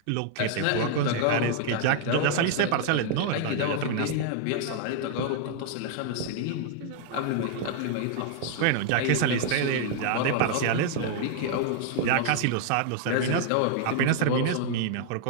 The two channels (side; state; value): both; different; correlation 0.00